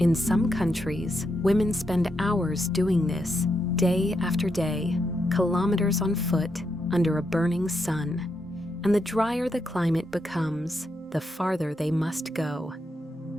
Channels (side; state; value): both; normal; correlation 0.82